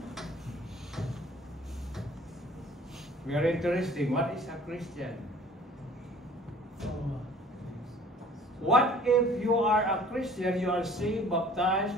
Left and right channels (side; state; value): both; normal; correlation 0.51